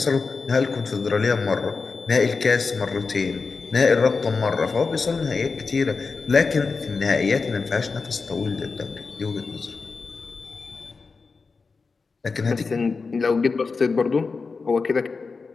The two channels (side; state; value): right; quieter; 4.5 dB